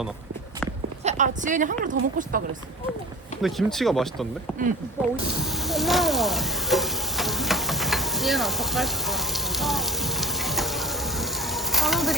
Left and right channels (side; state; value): both; normal; correlation 0.40